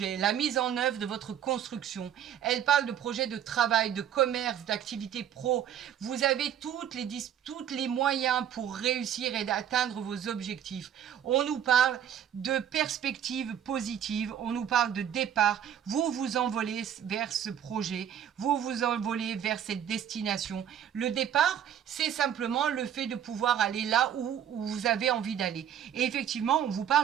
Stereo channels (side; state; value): left; quieter; 9.6 dB